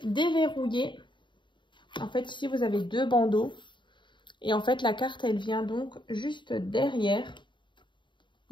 déverrouiller. En fait, ici, vous avez 2 bandeaux. Et en fait, la carte, elle vient donc juste derrière,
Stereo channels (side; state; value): right; late; 0.23 ms